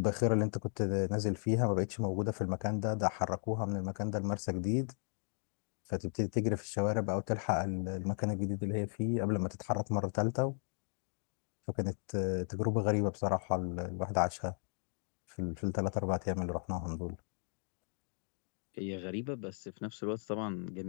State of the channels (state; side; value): silent; right; 54 dB below the other